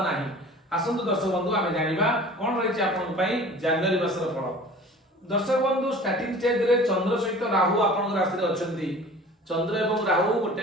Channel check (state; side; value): normal; both; correlation 0.43